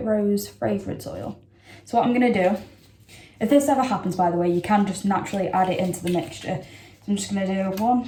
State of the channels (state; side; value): identical; both; correlation 1.00